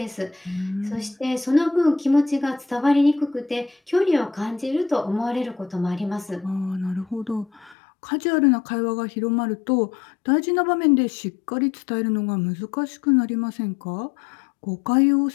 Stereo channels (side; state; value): right; drops out; at 7.8 s